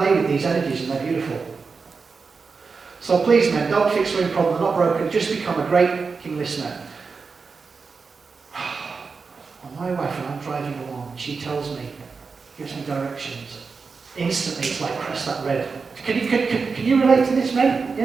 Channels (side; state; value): left; quieter; 4.8 dB